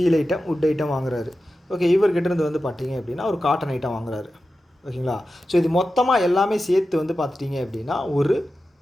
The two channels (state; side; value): normal; both; correlation 0.93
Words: item, would item வாங்குறாரு. ஓகே. இவர்கிட்டேருந்து வந்து பார்த்திங்க அப்படின்னா ஒரு காட்டன் ஐட்டம் வாங்குறாரு. ஓகேங்களா? ஸோ இது மொத்தமாக எல்லாமே சேர்த்து வந்து பார்த்துட்டிங்க அப்படின்னா ஒரு